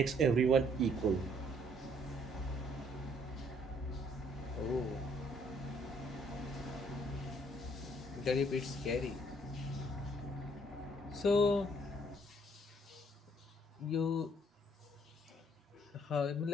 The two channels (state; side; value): normal; both; correlation 0.64